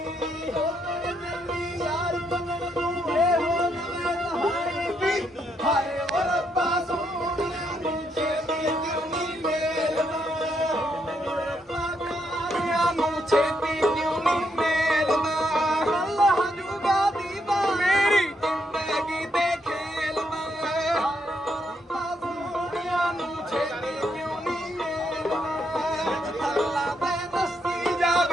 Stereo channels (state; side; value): normal; both; correlation 0.77